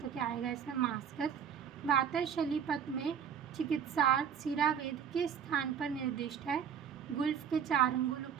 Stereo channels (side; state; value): left; quieter; 7.9 dB